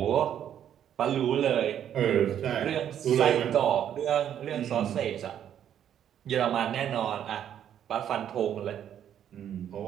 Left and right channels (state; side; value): quieter; left; 9.9 dB